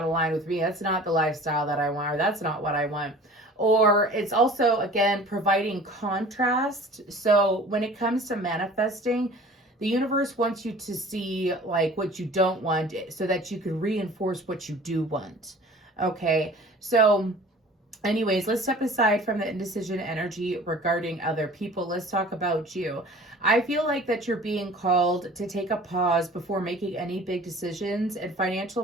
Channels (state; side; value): normal; both; correlation 0.45